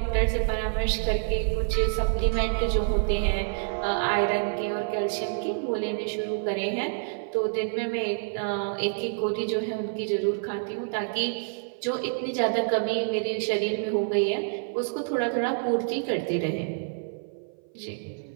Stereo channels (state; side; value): silent; left; 57 dB below the other